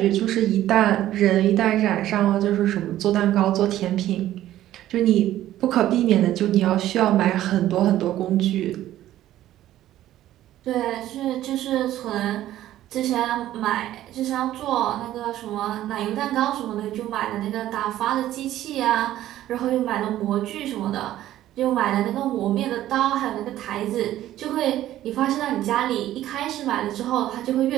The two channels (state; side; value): quieter; left; 13.5 dB